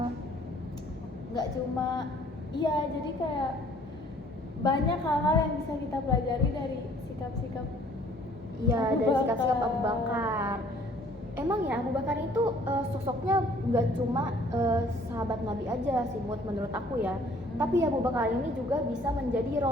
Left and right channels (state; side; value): normal; both; correlation 0.57